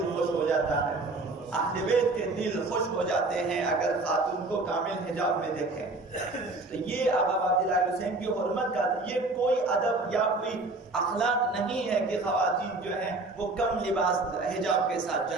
خوش ہو جاتا ہے، اہل بیت کے دل خوش ہو جاتے ہیں اگر خاتون کو کامل حجاب میں دیکھیں۔ تو یہ آقا عبداللہ حسین کی حرمت کا یہ کوئی ادب یا کوئی اخلاق نہیں ہے کہ خواتین جو ہیں وہ کم لباس حجاب کے ساتھ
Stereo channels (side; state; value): left; quieter; 3.1 dB